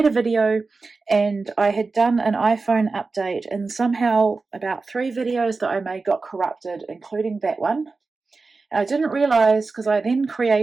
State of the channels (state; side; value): quieter; left; 4.0 dB